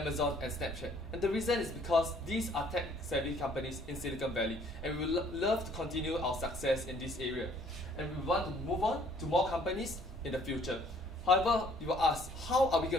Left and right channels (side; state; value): both; normal; correlation 0.60